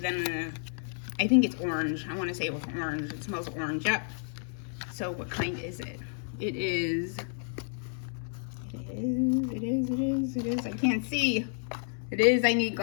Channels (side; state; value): right; silent; 57 dB below the other